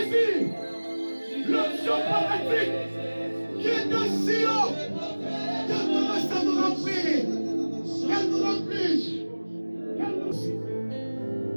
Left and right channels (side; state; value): both; inverted; correlation -1.00